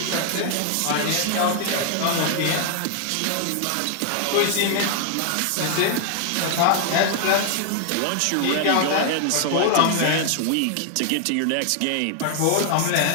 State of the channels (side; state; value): both; different; correlation 0.00